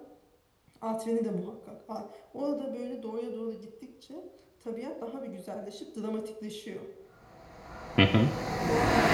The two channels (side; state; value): both; identical; correlation 1.00